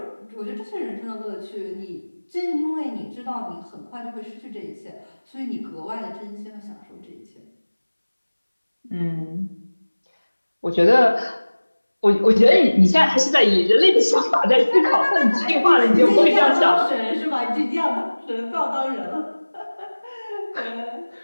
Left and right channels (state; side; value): inverted; both; correlation -1.00